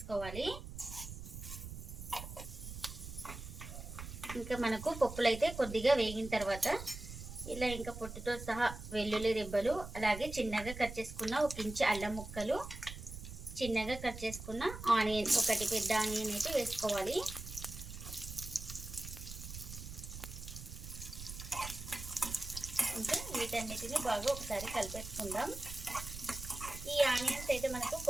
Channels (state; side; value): noise; right; rumble, 10 dB below the sound